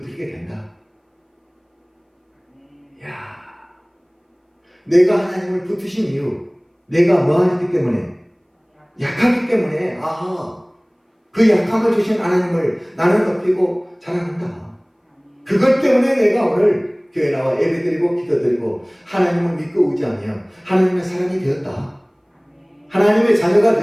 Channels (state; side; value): identical; both; correlation 1.00